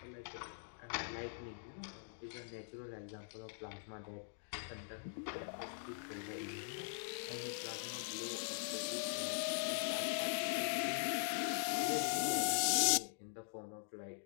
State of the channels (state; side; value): silent; right; digital silence